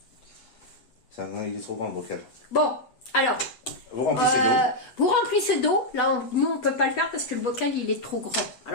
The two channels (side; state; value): right; late; 8.1 ms